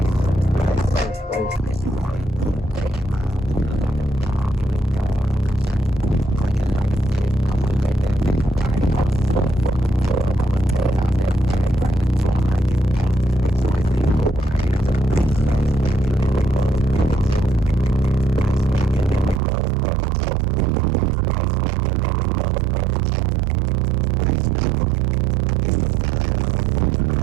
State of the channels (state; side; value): drops out; left; at 19.4 s